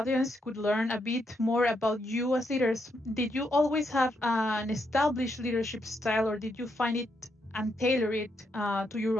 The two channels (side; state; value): both; normal; correlation 0.79